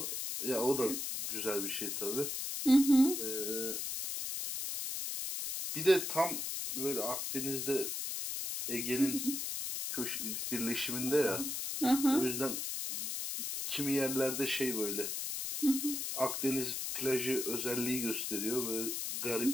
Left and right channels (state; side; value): noise; left; hiss, 3 dB below the sound